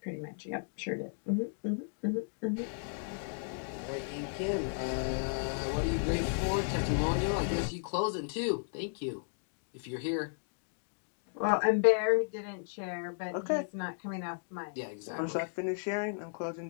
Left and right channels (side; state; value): right; silent; digital silence